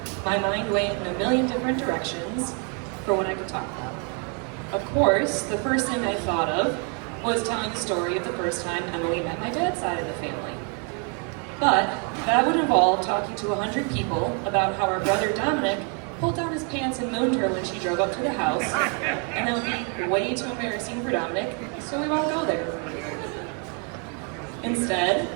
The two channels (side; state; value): left; quieter; 38.1 dB